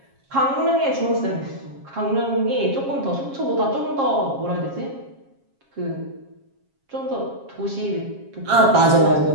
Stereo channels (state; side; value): late; left; 7.3 ms